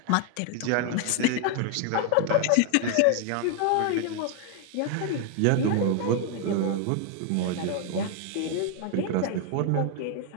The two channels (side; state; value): both; different; correlation 0.01